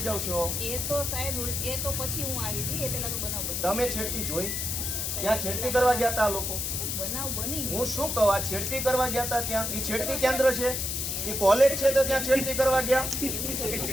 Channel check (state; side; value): noise; left; hiss, 2 dB below the sound